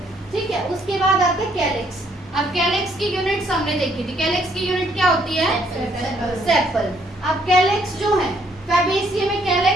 ठीक है। उसके बाद आते हैं कैलिक्स। अब कैलिक्स की यूनिट्स हमने देखी थी। कैलिक्स की यूनिट क्या होती है? सेपल। अब कैलिक्स जो है फैबेसिया में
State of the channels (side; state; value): both; normal; correlation 0.68